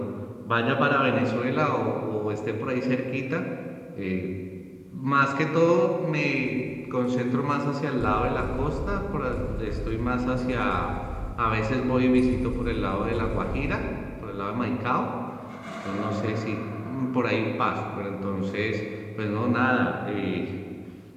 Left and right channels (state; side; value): identical; both; correlation 1.00